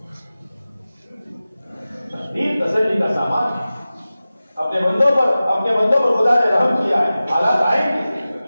تقدیر تسلی کا سامان ہے۔ اپنے بندوں پر خدا نے رحم کیا ہے۔ حالات آئیں گے،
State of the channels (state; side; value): inverted; both; correlation -0.96